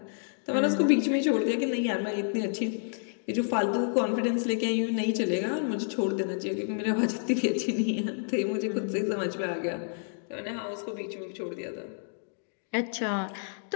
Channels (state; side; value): silent; right; digital silence